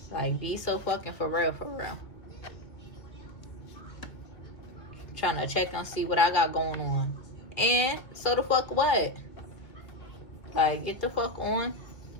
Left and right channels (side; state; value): right; late; 2.2 ms